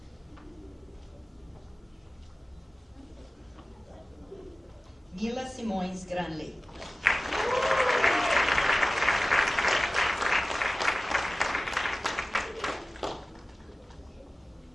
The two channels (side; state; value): both; normal; correlation 0.97